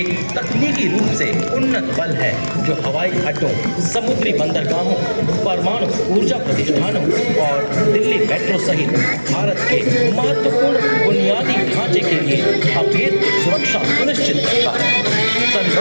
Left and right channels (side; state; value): both; inverted; correlation -1.00